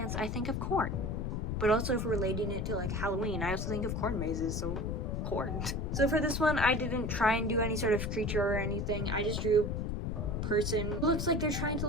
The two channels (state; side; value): noise; left; rumble, 1 dB below the sound